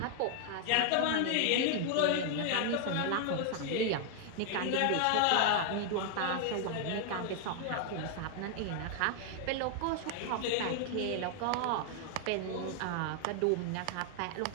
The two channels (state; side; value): different; both; correlation 0.00